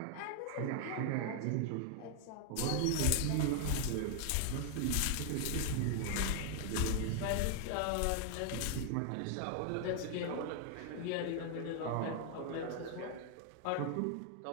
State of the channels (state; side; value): different; both; correlation 0.00